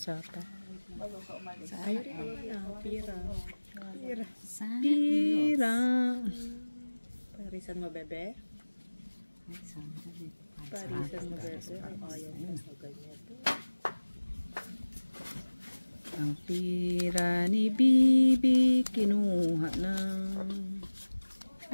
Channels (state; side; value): inverted; both; correlation -1.00